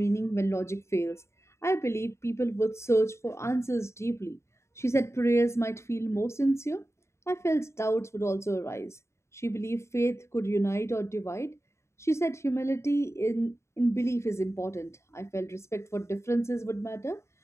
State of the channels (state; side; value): late; right; 0.13 ms